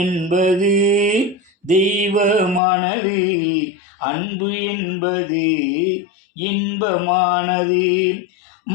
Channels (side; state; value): right; drops out; at 2.6 s